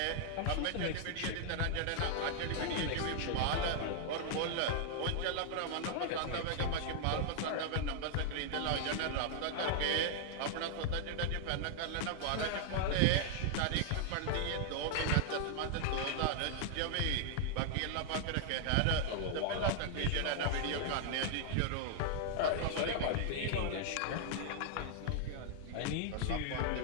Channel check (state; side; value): different; both; correlation 0.00